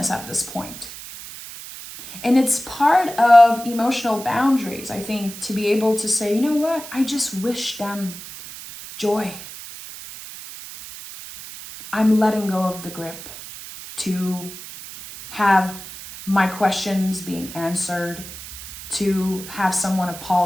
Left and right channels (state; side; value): noise; right; hiss, 13 dB below the sound